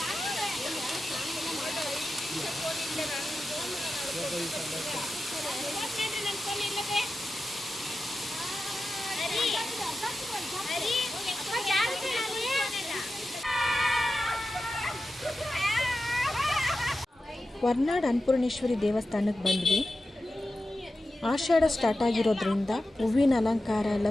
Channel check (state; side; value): normal; both; correlation 0.92